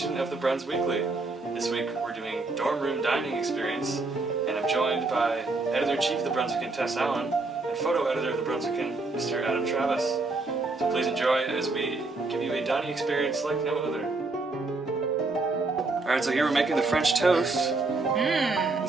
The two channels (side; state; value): left; quieter; 3.4 dB